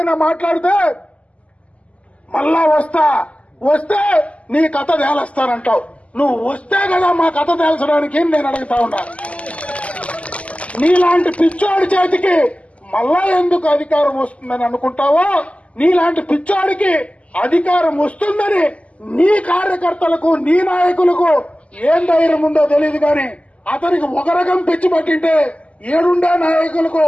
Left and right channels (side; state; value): right; late; 0.064 ms